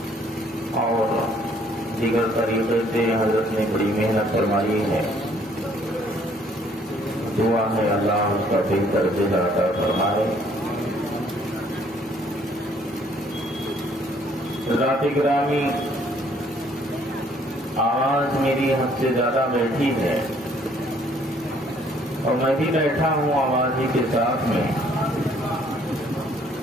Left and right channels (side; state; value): both; normal; correlation 0.62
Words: اور دیگر طریقے سے حضرت نے بڑی محنت فرمائی ہے. دعا ہے اللہ اس کا بہتر جزا عطا فرمائے. حضرات گرامی، آواز میری حد سے زیادہ بیٹھی ہے اور میں بھی بیٹھا ہوں آواز ہی کے ساتھ میں.